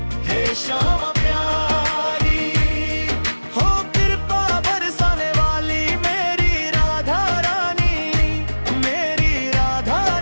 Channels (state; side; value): inverted; both; correlation -1.00